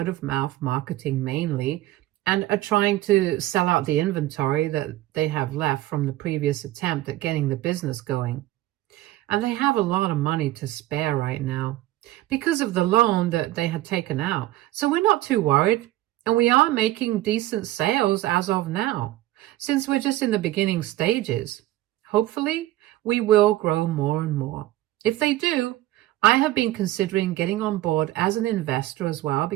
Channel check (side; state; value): left; quieter; 15.9 dB